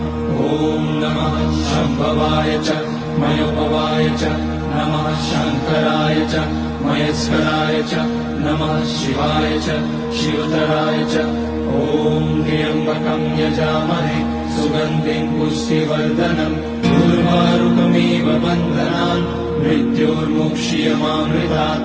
ॐ नमः शम्भवाय च मयोपवाय च नमः शङ्कराय च महेश्वराय च नमः शिवाय च शिवतराय च। ॐ त्र्यम्बकं यजामहे सुगन्धिं पुष्टिवर्धनम् उर्वारुकमिव बन्धनान् मृत्योर्मुक्ष्यमामृतात्।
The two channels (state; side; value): identical; both; correlation 1.00